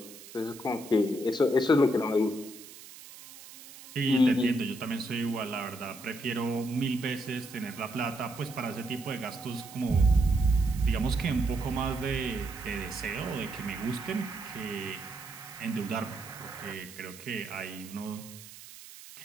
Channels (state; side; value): noise; right; hiss, 17 dB below the sound